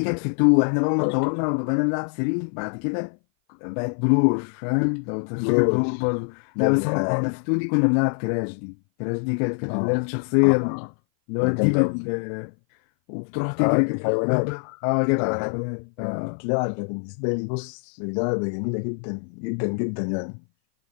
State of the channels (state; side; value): silent; right; 58 dB below the other